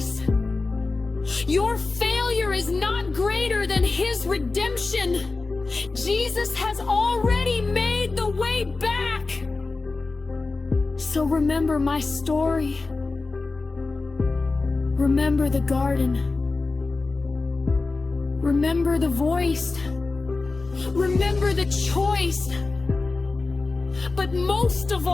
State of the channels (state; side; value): quieter; right; 3.7 dB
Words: Your failure is not greater than his redemption. Jesus has already made the way back. So remember my story. Remember the garden. Remember the voice. Remember the choice. But most of